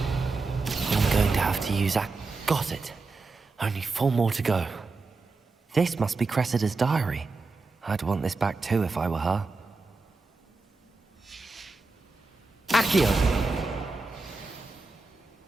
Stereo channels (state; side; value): quieter; left; 3.7 dB